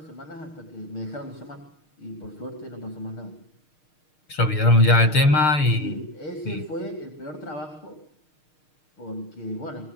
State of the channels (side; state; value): right; late; 6.5 ms